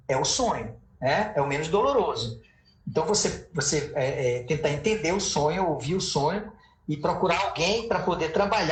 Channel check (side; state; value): both; identical; correlation 1.00